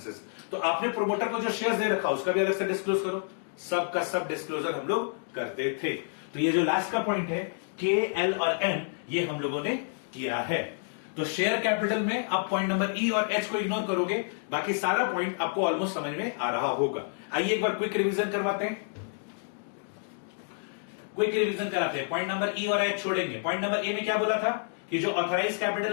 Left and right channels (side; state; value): right; silent; digital silence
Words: तो आपने प्रोमोटर को जो शेयर्स दे रखा उसका भी अलग से डिस्क्लोज करो। सब का सब डिस्क्लोजर हम लोग करते थे। तो ये जो लास्ट का पॉइंट है के, एल और एम, ये हम लोगों ने किया है। तो शेयर कैपिटल में आप पॉइंट नंबर ई और एच को इग्नोर करोगे, बाकी सारा पॉइंट आपको ऑलमोस्ट समझ में आ रहा होगा। आइए एक बार क्विक रिवीजन करवाते हैं, क्विक रिवीजन कराते हैं। पॉइंट नंबर ई और एच छोड़ेंगे। पॉइंट नंबर ए में क्या बोला था कि जो ऑथराइज